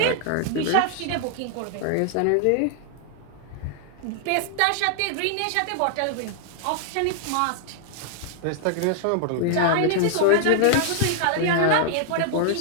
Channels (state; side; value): different; both; correlation 0.00